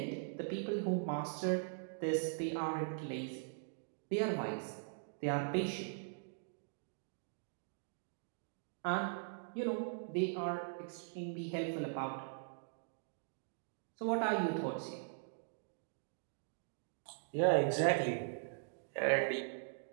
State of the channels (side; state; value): left; silent; digital silence